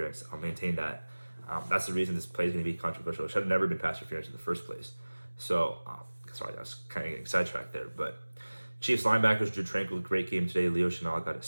I'll maintain that. That's the reason this play is going to be controversial. It should have never been pass interference in the first place. So, sorry, I was kind of getting sidetracked there. But Chiefs linebackers, Drew Tranquil, great game today. Leo Chenal got a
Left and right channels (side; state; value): both; inverted; correlation -1.00